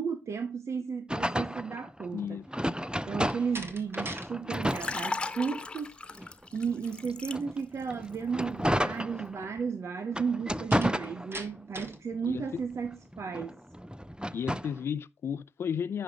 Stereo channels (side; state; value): both; normal; correlation 0.83